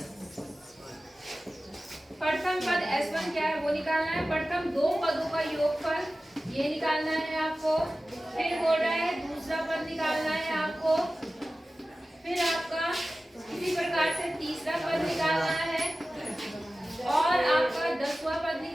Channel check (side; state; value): both; normal; correlation 0.95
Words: प्रथम पद S1 क्या है वो निकालना है। प्रथम दो पदों का योगफल ये निकालना है आपको। फिर बोल रहा है दूसरा पद निकालना है आपको। फिर आपका इसी प्रकार से तीसरा पद निकालना है और आपका 10वां पद